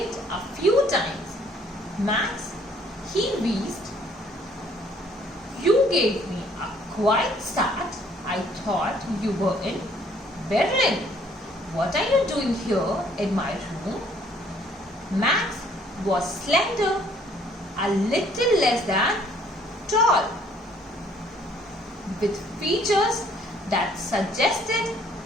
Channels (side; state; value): both; normal; correlation 0.61